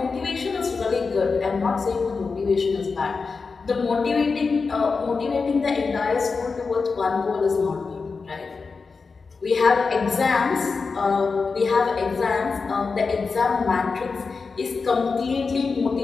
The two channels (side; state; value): right; quieter; 4.6 dB